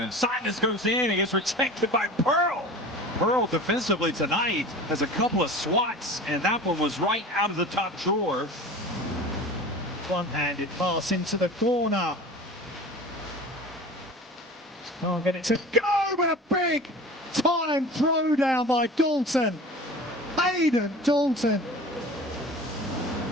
and Sinus goes in. He gets rejected by Pearl. Pearl defensively tonight has a couple of swats, and that one was right out of the top drawer. Front-handed pass into the corner. Can't get it to go, but a big time throwdown by Dalton. Hayden Dalton.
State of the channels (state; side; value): normal; both; correlation 0.37